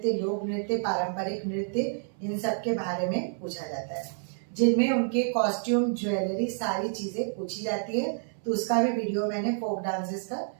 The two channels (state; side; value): silent; left; 59 dB below the other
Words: लोक नृत्य, पारंपरिक नृत्य, इन सब के बारे में पूछा जाता है, जिनमें उनके कॉस्ट्यूम, ज्वेलरी, सारी चीजें पूछी जाती है। तो उसका भी वीडियो मैंने फोक डांसेस का